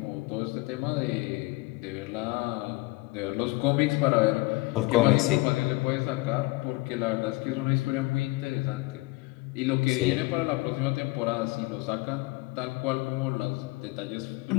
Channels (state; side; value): quieter; right; 23.0 dB